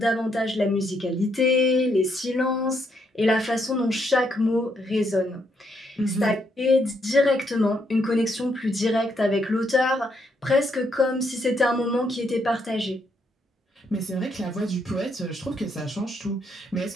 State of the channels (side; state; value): both; normal; correlation 0.75